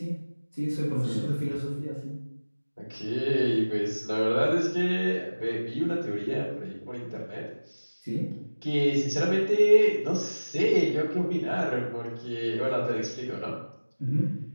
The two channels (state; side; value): inverted; both; correlation -1.00